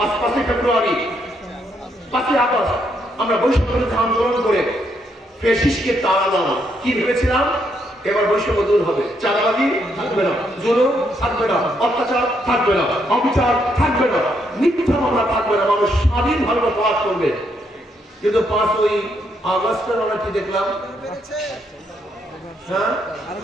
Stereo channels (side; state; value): both; normal; correlation 0.75